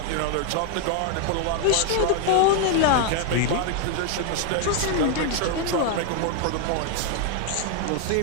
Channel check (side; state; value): both; different; correlation 0.00